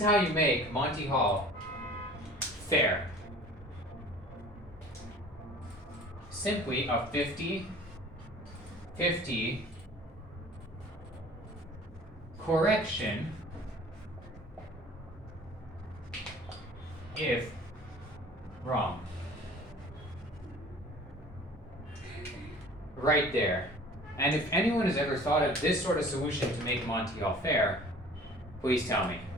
you make Monty Hall fair. Simply a 50-50 correction if wrong. Right there. And if anyone has ever thought of this sort of solution to make Monty Hall fair, please tell me.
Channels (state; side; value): normal; both; correlation 0.47